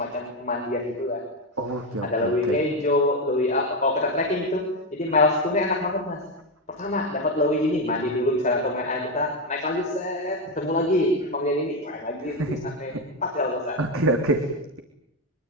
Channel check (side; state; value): both; normal; correlation 0.09